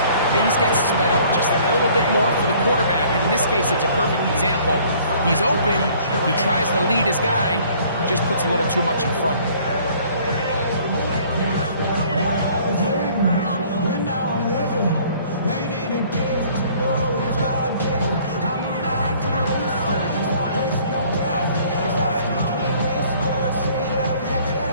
things get sped up just a little bit more for the quarterback. And in this case, it's a perfect example. He's open, he tries to lead his guy, just puts a little too much in front of him.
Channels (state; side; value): inverted; both; correlation -0.56